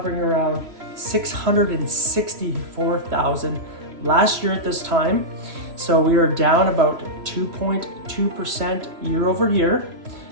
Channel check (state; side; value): late; left; 3.0 ms